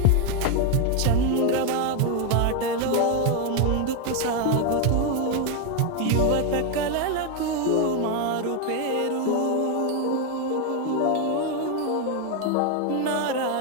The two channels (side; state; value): both; different; correlation 0.01